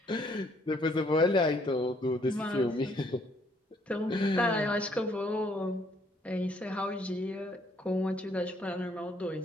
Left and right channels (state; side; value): normal; both; correlation 0.66